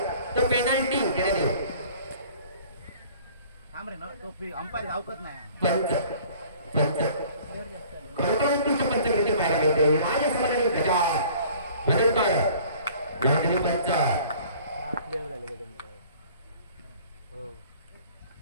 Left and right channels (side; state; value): both; inverted; correlation -0.51